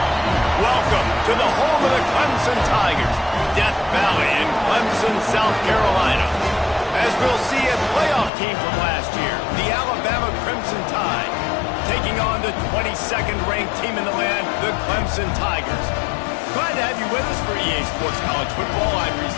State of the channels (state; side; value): drops out; right; at 8.3 s